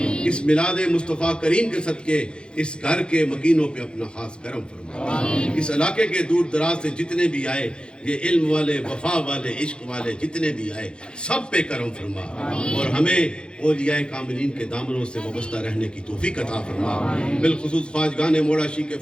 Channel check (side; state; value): right; late; 0.052 ms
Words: اس میلاد مصطفیٰ کریم کے صدقے اس گھر کے مکینوں پہ اپنا خاص کرم فرما. اس علاقے کے دور دراز سے جتنے بھی آئے، یہ علم والے، وفا والے، عشق والے جتنے بھی آئے، سب پہ کرم فرما. اور ہمیں اولیاء کاملین کے دامنوں سے وابستہ رہنے کی توفیق عطا فرما. بالخصوص خواجگان موڑاشی کے